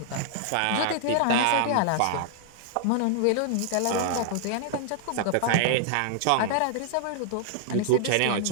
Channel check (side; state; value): both; different; correlation 0.00